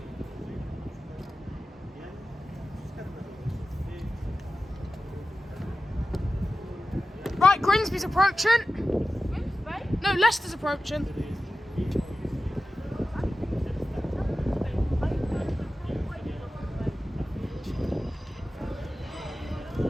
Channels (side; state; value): both; normal; correlation 0.94